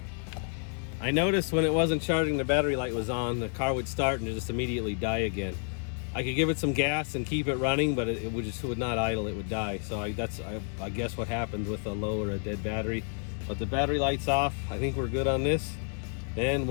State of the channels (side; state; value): right; silent; 58 dB below the other